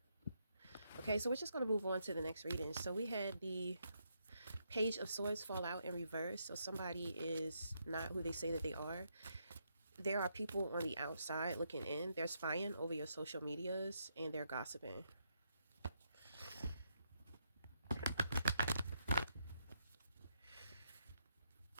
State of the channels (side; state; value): both; inverted; correlation -0.78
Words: Okay, so we're just going to move on to the next reading. So we had the Page of Swords fall out in reverse. So somebody is not who they say that they are. There are people on the outside looking in. They're spying over your social medias and they're gossiping.